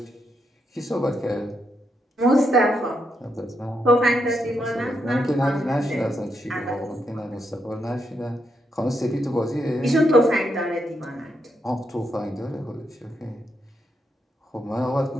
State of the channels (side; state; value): both; normal; correlation 0.81